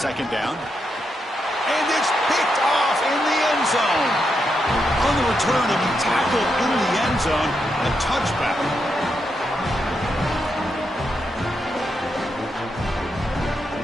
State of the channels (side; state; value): both; normal; correlation 0.83